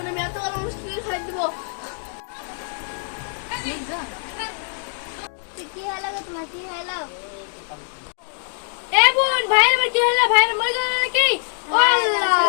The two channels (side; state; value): right; silent; digital silence